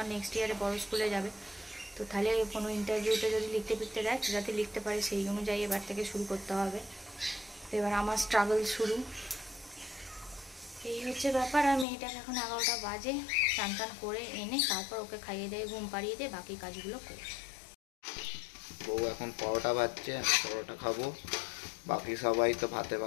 নেক্সট ইয়ারে বড় স্কুলে যাবে, তো তাহলে কোনো ইন্টারভিউতে যদি লিখতে দেয় যাতে লিখতে পারে, সেই অনুযায়ী এবার থেকে শুরু করতে হবে। তো এবার আমার স্ট্রাগল শুরু, এই হচ্ছে ব্যাপার। আর মেয়েটাকে এখন 11টা বাজে, চান টান করে এনে তারপর ওকে খাইয়ে দিয়ে ঘুম পাড়িয়ে দিয়ে বাকি কাজগুলো করি। বউ এখন পরোটা ভাজছে, আমি পরোটা খাবো, বাকি সবাই তো ভাতে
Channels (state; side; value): drops out; right; at 11.9 s